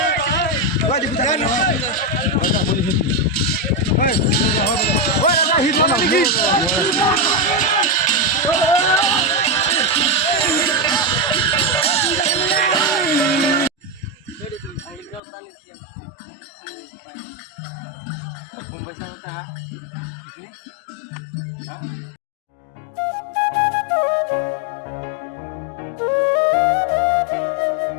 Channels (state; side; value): drops out; right; at 15.2 s